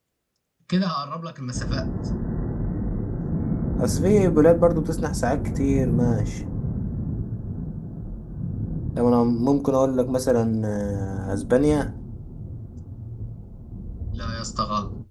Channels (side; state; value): both; identical; correlation 1.00